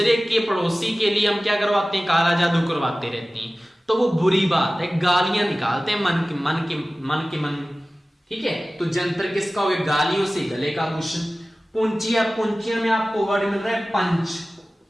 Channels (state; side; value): normal; both; correlation 0.97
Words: के पड़ोसी के लिए हम क्या करवाते हैं? काला जादू करवाते रहते हैं। तो वो बुरी बात है, गालियां निकालते हैं मन के। ठीक है, तो जंतर किसका हो गया? गालियों से गले का आभूषण। पुंचिया में आपको वर्ड मिल रहा है पंच,